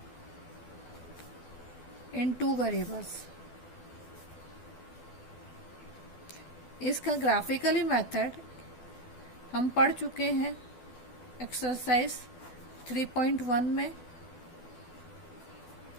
in two variables. इसका ग्राफिकली मेथड हम पढ़ चुके हैं एक्सरसाइज 3.1 में।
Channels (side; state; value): right; late; 12 ms